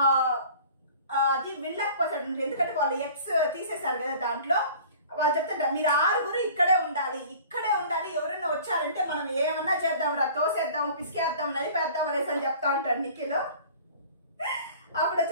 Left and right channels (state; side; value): inverted; both; correlation -0.46